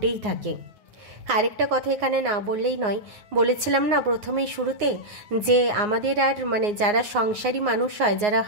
থাকে। আরেকটা কথা এখানে না বললেই নয়, বলেছিলাম না প্রথমেই শুরুতে যে আমাদের আর মানে যারা সংসারী মানুষ হয়, যারা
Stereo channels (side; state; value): left; late; 9.6 ms